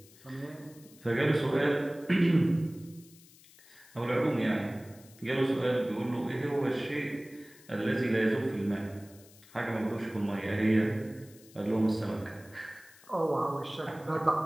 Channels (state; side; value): noise; left; hiss, 24 dB below the sound